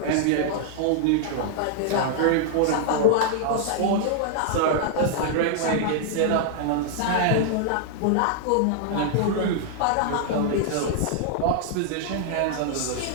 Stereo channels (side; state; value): both; different; correlation -0.01